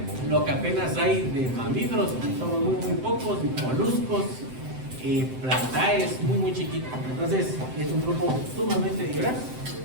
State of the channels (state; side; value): late; left; 7.8 ms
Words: lo que apenas hay de mamíferos, somos muy pocos, moluscos, plantaes, muy chiquitos. Entonces, es un grupo sumamente diverso,